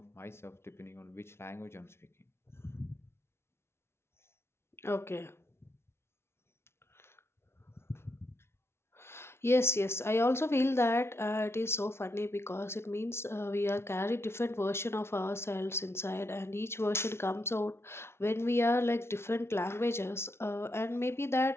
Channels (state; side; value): late; right; 0.12 ms